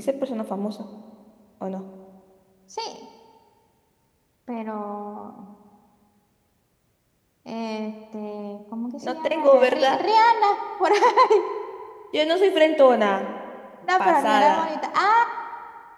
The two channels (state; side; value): identical; both; correlation 1.00